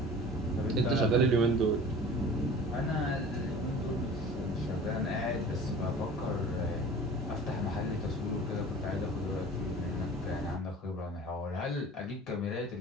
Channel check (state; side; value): normal; both; correlation 0.42